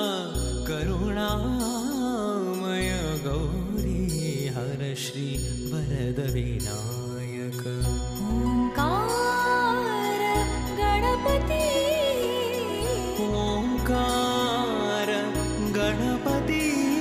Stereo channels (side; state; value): both; identical; correlation 1.00